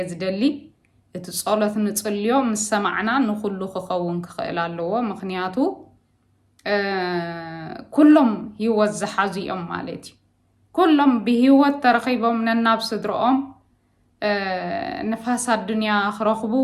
ዝደሊ እቲ ጸሎት ንጽልዮ ምስ ሰማዕና ንኹሉ ክኸውን ክኽእል ኣለዎ ምኽንያቱ ኩሎም ህይወት ዝሓዙ እዮም ማለት እዩ ኩሎም ብህይወት ተረኺቦም ነናብ ስድሮኦም ንፋስ ኣዱንያ ክረኽቡ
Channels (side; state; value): both; identical; correlation 1.00